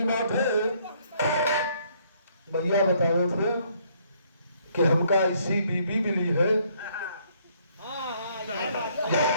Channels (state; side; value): inverted; both; correlation -0.67